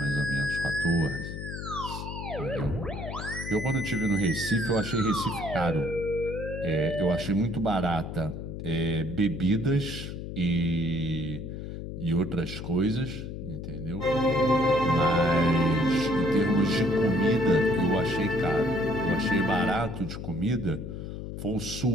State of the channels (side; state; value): left; noise; hum, 8 dB below the sound